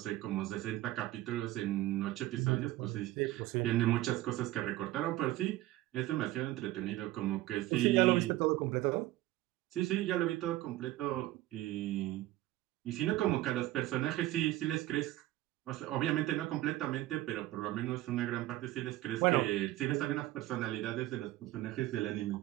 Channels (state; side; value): quieter; left; 16.3 dB